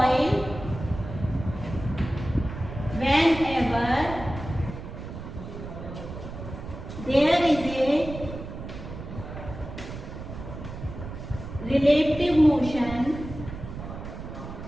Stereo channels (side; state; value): right; noise; rumble, 10 dB below the sound